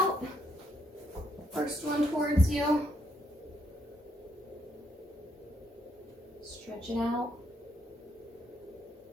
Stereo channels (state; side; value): normal; both; correlation 0.74